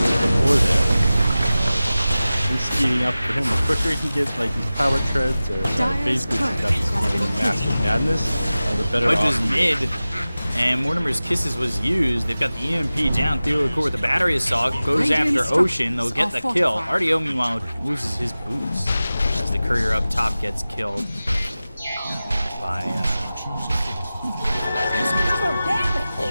before there. He's speeding up for him. The quicker he can get like his power treads or phase boosts up to massive madness, the better Pudge off is he is. mid, and Mortimer's Kisses was used. They've got the EMP down. Theokor with the battery assault goes after Ocean. They'll get the kill. RDO, meanwhile, loses his boots as the courier up top gets killed by.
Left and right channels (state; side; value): inverted; both; correlation -0.96